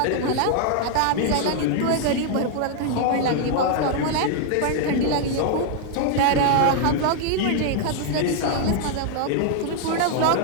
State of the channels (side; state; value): both; different; correlation 0.00